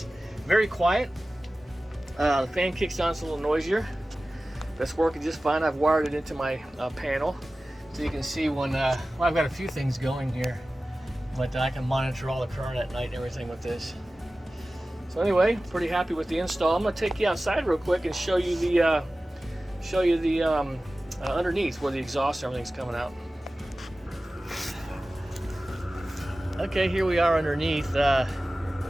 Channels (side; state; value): both; normal; correlation 0.96